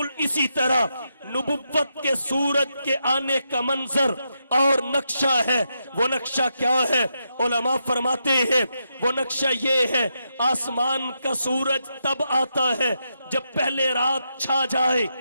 اسی طرح نبوت کے سورج کے آنے کا منظر اور نقشہ ہے۔ وہ نقشہ کیا ہے؟ علماء فرماتے ہیں وہ نقشہ یہ ہے آسمان کا سورج تب آتا ہے جب پہلے رات چھا جائے،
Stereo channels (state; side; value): inverted; both; correlation -0.83